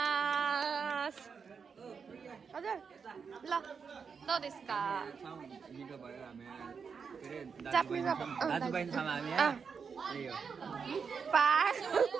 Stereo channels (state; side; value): quieter; left; 5.9 dB